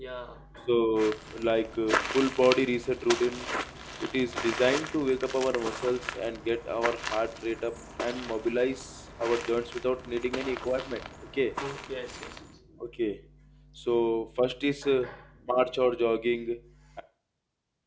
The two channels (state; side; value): identical; both; correlation 1.00